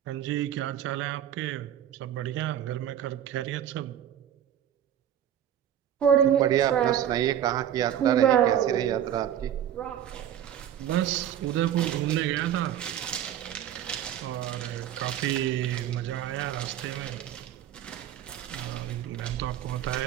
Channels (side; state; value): left; quieter; 10.5 dB